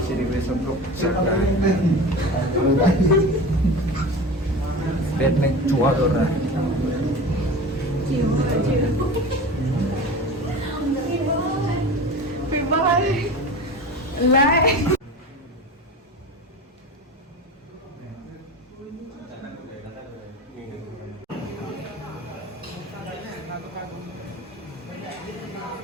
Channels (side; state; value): both; normal; correlation 0.33